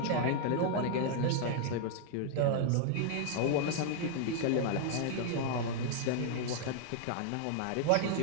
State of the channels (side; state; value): both; different; correlation 0.00